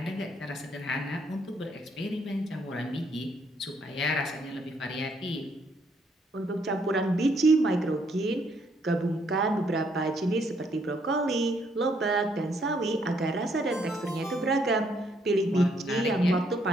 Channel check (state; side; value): normal; both; correlation 0.71